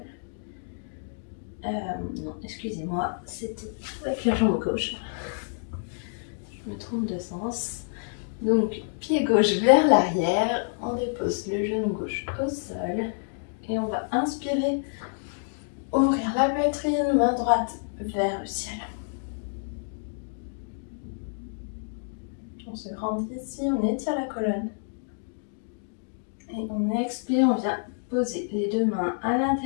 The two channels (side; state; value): right; silent; digital silence